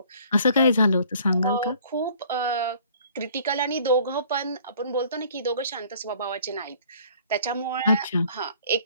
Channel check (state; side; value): inverted; both; correlation -0.55